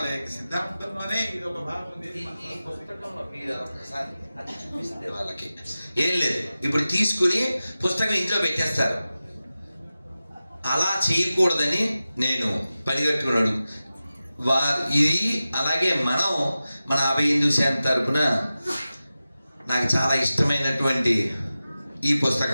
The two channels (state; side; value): inverted; both; correlation -0.95